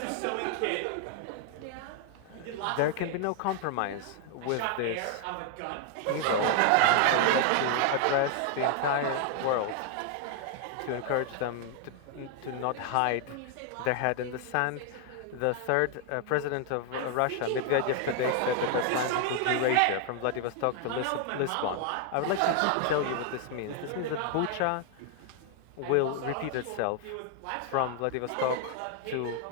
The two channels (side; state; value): both; different; correlation 0.00